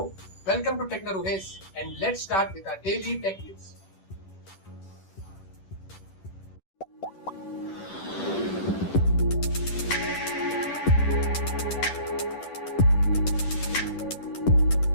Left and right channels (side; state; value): right; late; 10 ms